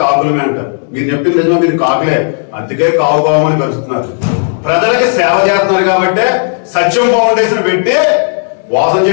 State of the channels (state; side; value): silent; right; digital silence